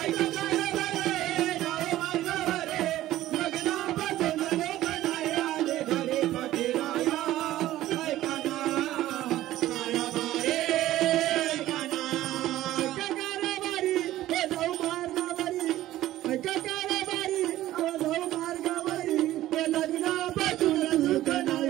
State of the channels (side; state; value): left; quieter; 14.6 dB